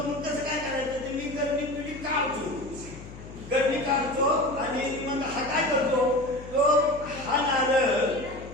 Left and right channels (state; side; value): noise; left; hum, 15 dB below the sound